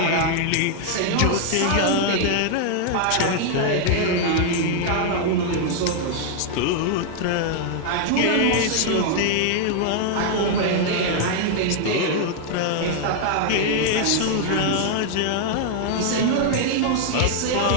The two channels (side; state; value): both; different; correlation 0.00